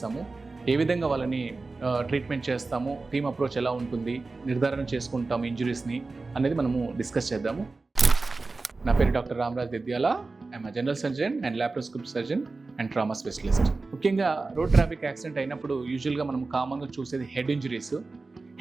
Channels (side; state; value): left; quieter; 3.7 dB